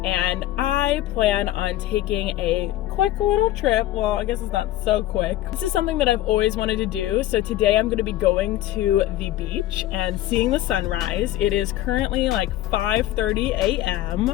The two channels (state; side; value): quieter; right; 14.4 dB